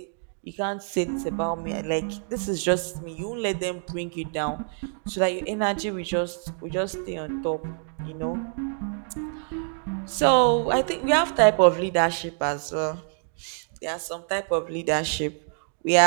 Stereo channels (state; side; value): silent; left; 56 dB below the other